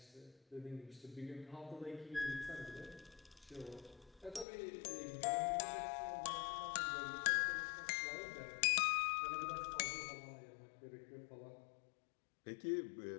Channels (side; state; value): right; drops out; at 4.5 s